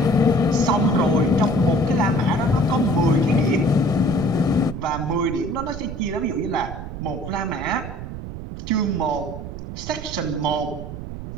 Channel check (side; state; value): right; noise; rumble, 9 dB below the sound